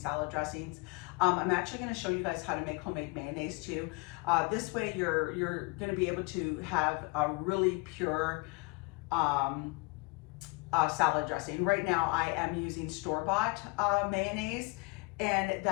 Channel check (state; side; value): quieter; right; 27.6 dB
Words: dressings. I'm actually going to show you guys how to make homemade mayonnaise too. This way you're going to be able to have a really pure salad dressing. Right now I am using store-bought mayonnaise, and